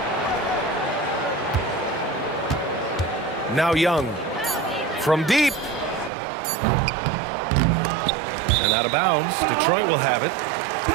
Now Young. From deep. And out of bounds. Detroit will have it.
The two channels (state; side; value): drops out; left; at 6.1 s